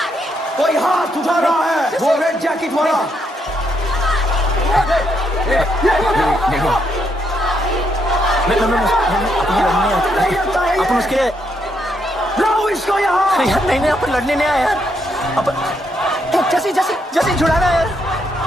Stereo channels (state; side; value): normal; both; correlation 0.76